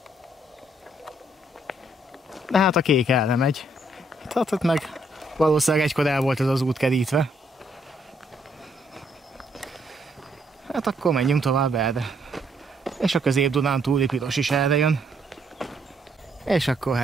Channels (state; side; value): normal; both; correlation 0.70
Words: De hát a kék erre megy. Tehát meg valószínűleg egykor el volt ez az út kerítve. Hát akkor menjünk tovább erre. És a Közép-Dunántúli piros is erre jön. És akkor